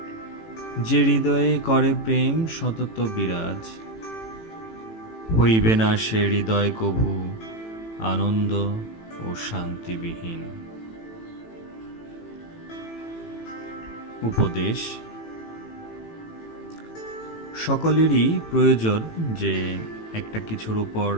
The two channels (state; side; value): late; right; 18 ms